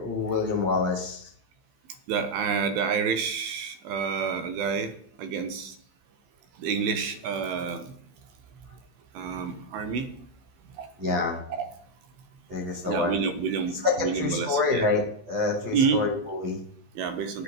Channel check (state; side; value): late; left; 16 ms